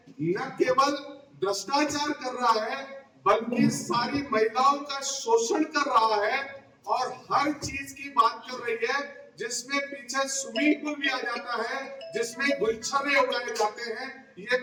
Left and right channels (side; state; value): both; identical; correlation 1.00